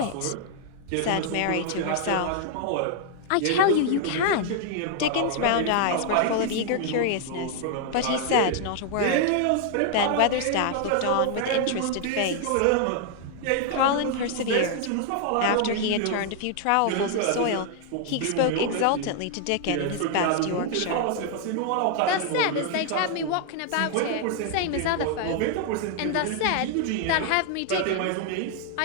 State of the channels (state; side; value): different; both; correlation 0.00